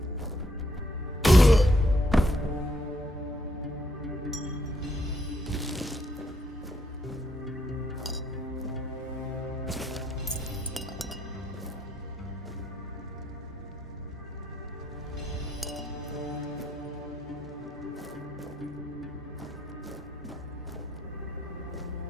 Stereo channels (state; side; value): normal; both; correlation 0.73